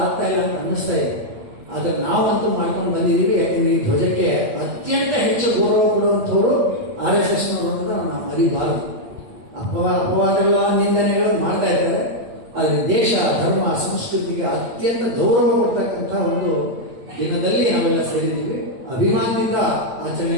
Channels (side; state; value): left; late; 8.2 ms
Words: ಆಗ್ತಾ ಇಲ್ಲ ಅಂತ ಅನ್ನಿಸ್ತಾ ಇದೆ. ಆದ್ರೆ ನಾವಂತೂ ಮಾಡ್ಕೊಂಡು ಬಂದಿದ್ದೀವಿ. ಯಾಕಂದ್ರೆ ಈ ಧ್ವಜಕ್ಕೆ ಅತ್ಯಂತ ಹೆಚ್ಚು ಗೌರವ ಕೊಡುವಂಥವ್ರು RSS ನೋಡೋದನ್ನ ನಾವು ಮರಿಬಾರದು. ಅಪವಾದಗಳ ನಿಂದನೆಗಳನ್ನು ಮಾಡ್ತಾ ಇದ್ದಾರೆ. ಆದರೆ ದೇಶ, ಧರ್ಮ, ಸಂಸ್ಕೃತಿಗೆ ಅತ್ಯಂತ ಗೌರವ ಕೊಡ್ತಕ್ಕಂಥ ಒಂದು ದಿನದಲ್ಲಿ ನಾವೆಲ್ಲ ಸೇರಿದ್ದೀವಿ. ಅಭಿಮಾನದಿಂದ